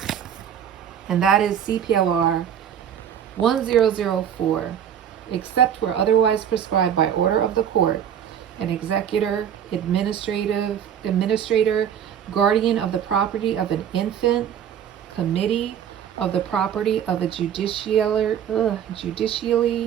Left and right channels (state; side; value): quieter; left; 9.1 dB